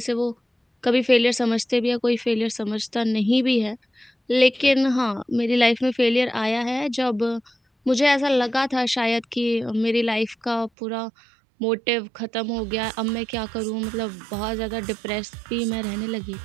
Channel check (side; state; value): left; drops out; at 10.7 s